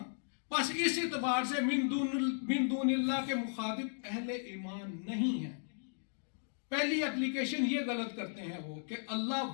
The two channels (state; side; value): silent; right; digital silence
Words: بس اس اعتبار سے من دون اللہ کے مخاطب اہل ایمان نہیں ہیں۔ پہلی اپلیکیشن یہ غلط کرتے ہیں وہ کہ اللہ